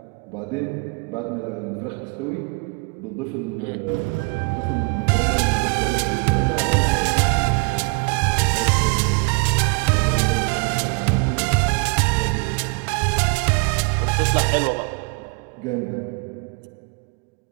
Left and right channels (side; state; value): left; quieter; 33.3 dB